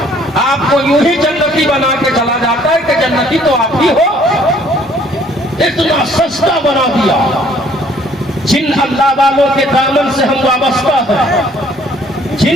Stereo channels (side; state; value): both; normal; correlation 0.60